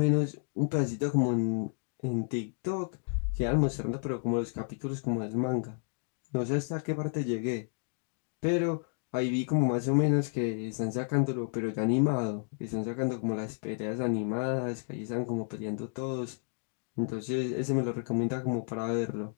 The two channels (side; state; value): right; silent; 57 dB below the other